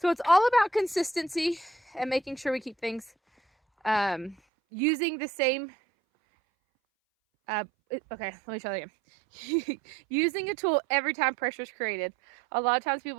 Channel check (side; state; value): left; drops out; at 4.4 s